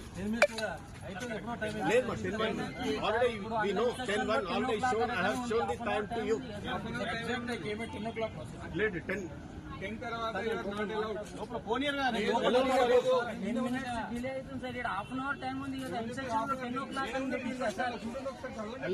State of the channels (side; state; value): both; identical; correlation 1.00